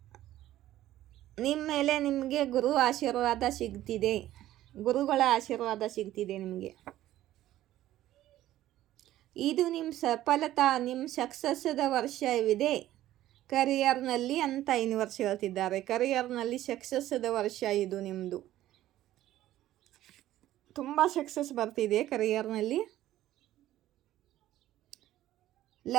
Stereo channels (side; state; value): left; quieter; 14.0 dB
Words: ನಿಮ್ಮ ಮೇಲೆ ನಿಮಗೆ ಗುರು ಆಶೀರ್ವಾದ ಸಿಗ್ತಿದೆ, ಗುರುಗಳ ಆಶೀರ್ವಾದ ಸಿಗ್ತಿದೆ ನಿಮಗೆ. ಇದು ನಿಮ್ಮ ಸಫಲತಾ, ನಿಮ್ಮ ಸಕ್ಸಸ್ದ ವರ್ಷವಿದೆ ಕರಿಯರ್ನಲ್ಲಿ ಅಂತ ಯೂನಿವರ್ಸ್ ಹೇಳ್ತಿದ್ದಾರೆ. ಕರಿಯರ್ನಲ್ಲಿ ಸಕ್ಸಸ್ದ ವರ್ಷ ಇದು ನಿಮ್ಮದು. ತುಂಬ ಸಕ್ಸಸ್ ಬರ್ತಿದೆ ಕರಿಯರ್ನಲ್ಲಿ.